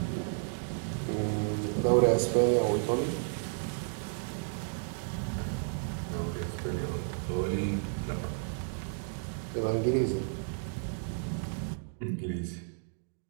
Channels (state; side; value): silent; left; digital silence